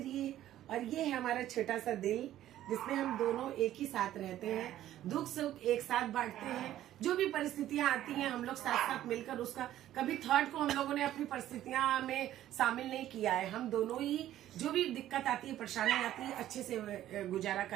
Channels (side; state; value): left; quieter; 12.9 dB